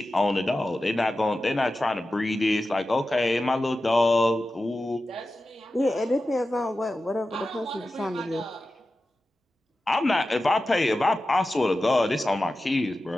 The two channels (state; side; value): normal; both; correlation 0.93